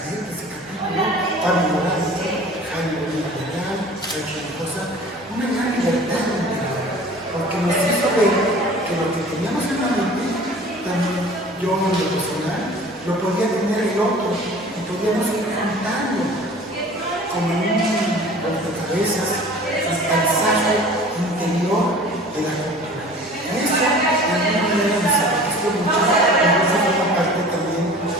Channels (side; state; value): both; normal; correlation 0.44